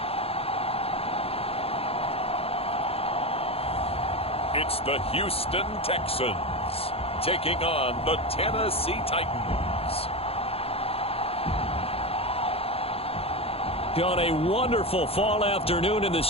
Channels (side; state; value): right; late; 0.28 ms